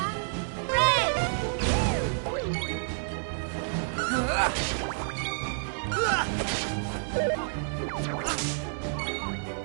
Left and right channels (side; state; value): left; silent; 58 dB below the other